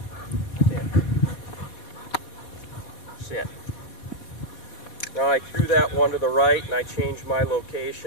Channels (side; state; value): right; late; 4.2 ms